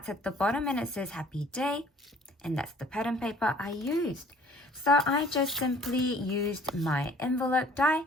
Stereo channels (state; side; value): normal; both; correlation 0.55